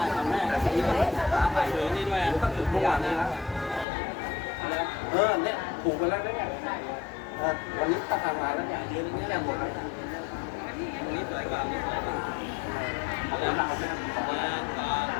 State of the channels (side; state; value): right; drops out; at 3.9 s